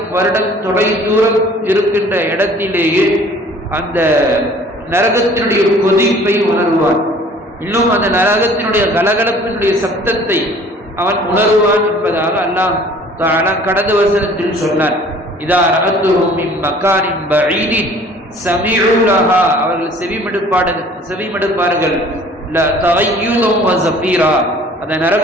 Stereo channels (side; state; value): both; normal; correlation 0.51